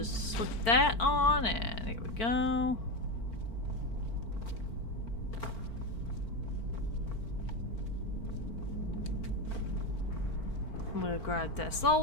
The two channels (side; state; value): right; late; 4.5 ms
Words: slip that on, and here we go. We'll grab that